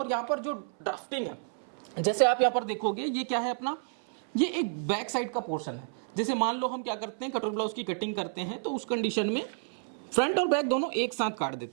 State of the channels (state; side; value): silent; left; 58 dB below the other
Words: यहाँ पर जो ड्राफ्टिंग है, जैसे आप यहाँ पर देखोगे, ये क्या है अपना, ये एक बैक साइड का पोर्शन है। जैसे मान लो हम क्या करते हैं, कटोरी ब्लाउज की कटिंग करते हैं, तो उस कंडीशन में फ्रंट और बैक दोनों एक साथ काट